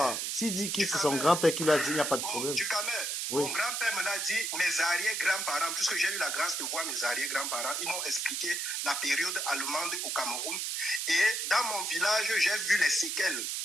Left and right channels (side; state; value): right; noise; hiss, 2 dB below the sound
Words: S'il dit que c'est son grand-père qui l'a dit, il n'y a pas de problème. Oui. Mon grand-père me l'a dit, mes arrière-grands-parents, puisque j'ai eu la grâce de voir mes arrière-grands-parents, ils m'ont expliqué la période allemande au Cameroun. Et dans mon village, j'ai vu les séquelles,